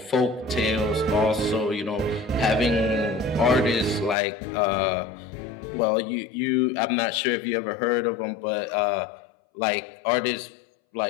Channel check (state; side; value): drops out; right; at 4.2 s